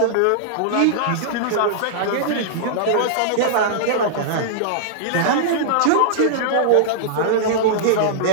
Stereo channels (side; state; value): both; different; correlation -0.02